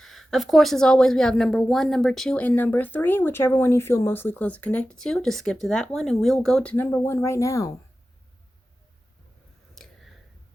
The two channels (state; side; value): normal; both; correlation 0.94